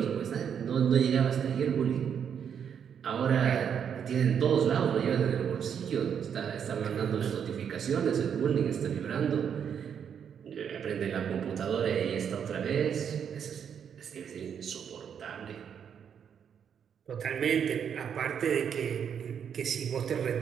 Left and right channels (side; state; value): left; quieter; 7.9 dB